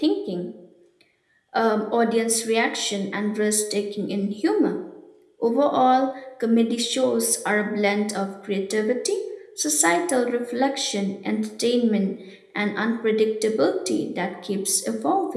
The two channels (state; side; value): identical; both; correlation 1.00